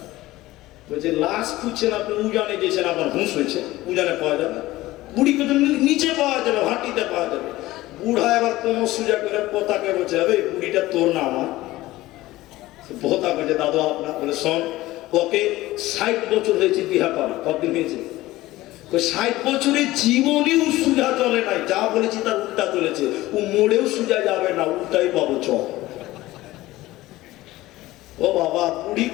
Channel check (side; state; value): right; quieter; 17.5 dB